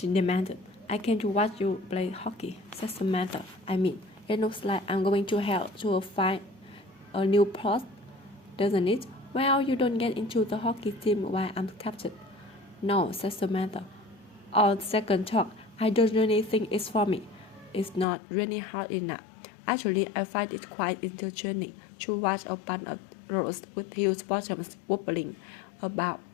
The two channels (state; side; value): drops out; right; at 18.1 s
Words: demanded. I came to watch you play hockey, said Samantha. I mean, it looks like I'm going to hell to find a new post, doesn't it? Well, you don't get into the hockey team while I'm captain. No, said Samantha. On second thought, I don't really think it's for me. It's not really hard enough. Actually, I find it quite entertaining to watch a bunch of girls with huge bottoms wobbling about